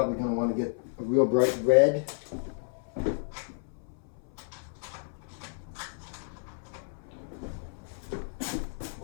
going to want to get a real bright red. A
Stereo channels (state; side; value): silent; right; 57 dB below the other